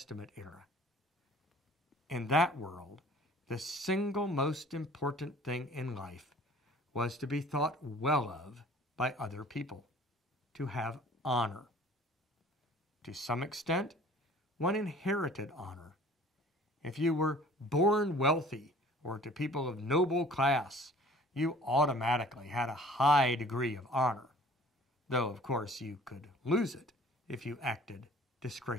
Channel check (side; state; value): both; normal; correlation 0.50